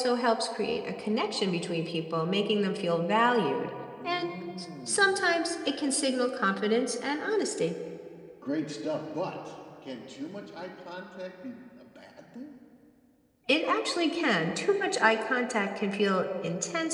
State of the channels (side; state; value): both; identical; correlation 1.00